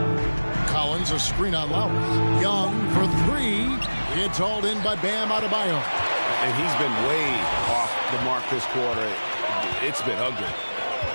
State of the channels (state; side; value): inverted; both; correlation -1.00